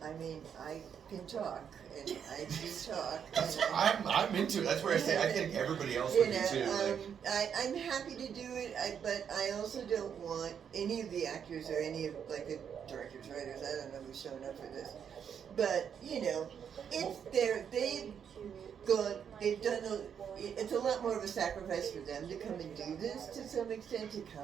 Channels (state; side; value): quieter; left; 7.8 dB